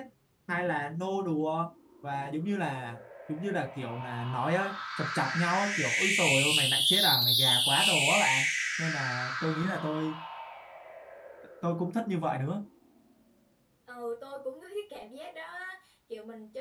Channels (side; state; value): both; identical; correlation 1.00